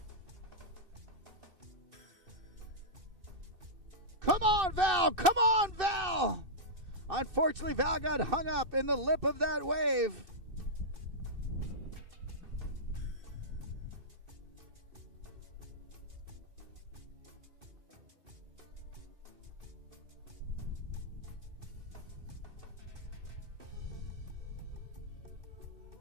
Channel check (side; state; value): left; late; 2.6 ms